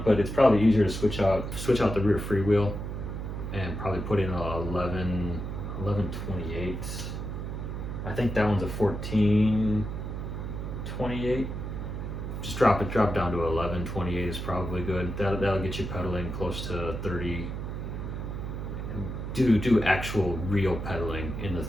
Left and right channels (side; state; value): right; noise; hum, 5 dB below the sound